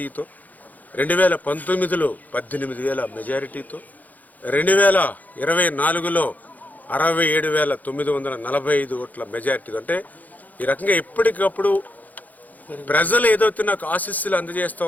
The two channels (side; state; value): right; late; 0.080 ms